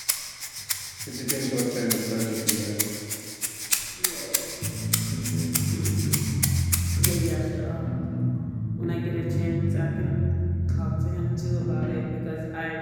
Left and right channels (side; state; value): both; identical; correlation 1.00